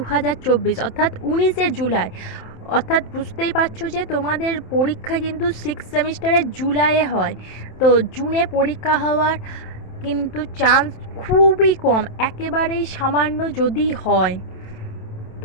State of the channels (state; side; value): late; right; 27 ms